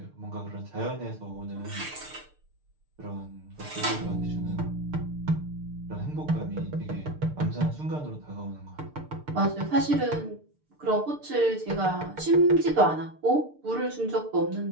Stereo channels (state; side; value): late; left; 6.6 ms